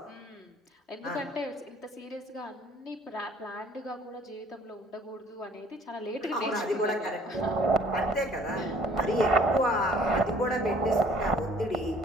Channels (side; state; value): both; normal; correlation 0.56